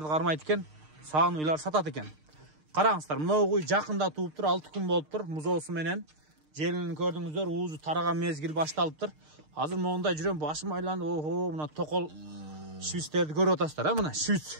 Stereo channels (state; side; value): late; left; 6.6 ms